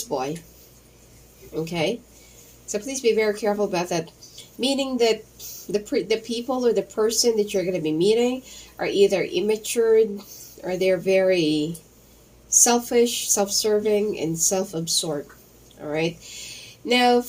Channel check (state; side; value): identical; both; correlation 1.00